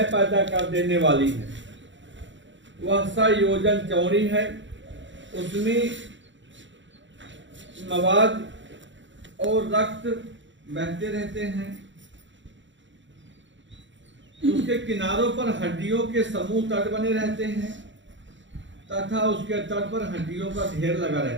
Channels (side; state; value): left; late; 0.54 ms